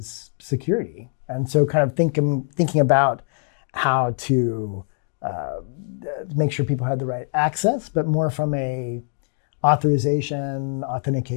security. And so kind of thinking about how to make sure people had the right access, but more from a authorization,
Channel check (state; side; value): silent; right; 59 dB below the other